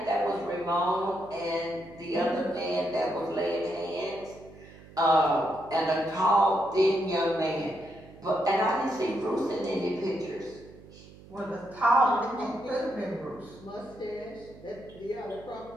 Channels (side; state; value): right; noise; hum, 20 dB below the sound